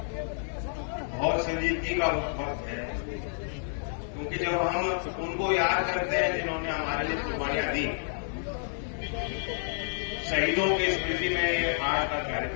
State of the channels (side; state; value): right; silent; digital silence